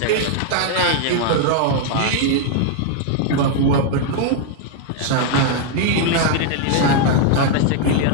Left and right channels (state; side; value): different; both; correlation 0.00